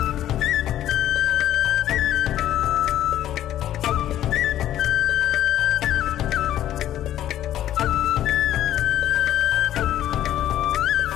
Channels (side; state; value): right; quieter; 12.3 dB